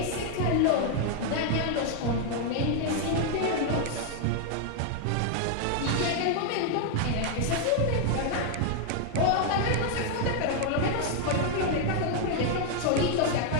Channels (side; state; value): both; different; correlation 0.00